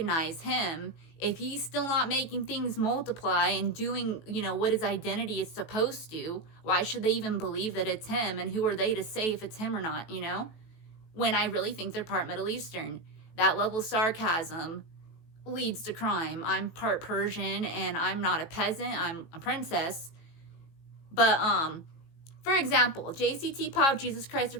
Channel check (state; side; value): late; right; 18 ms